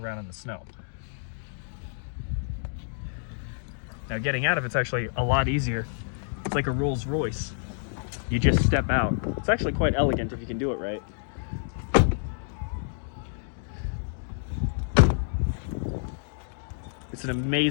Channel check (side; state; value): right; silent; digital silence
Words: in the snow. Now, getting out of it's actually a lot easier. It's like a Rolls Royce. You just step out. It's actually quite elegant if you can do it right. It's an